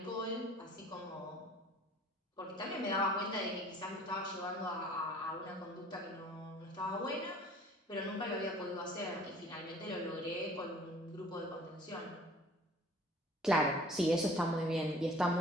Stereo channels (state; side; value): normal; both; correlation 0.50